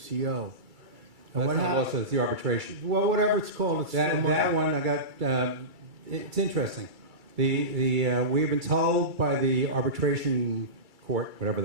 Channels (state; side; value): late; left; 2.3 ms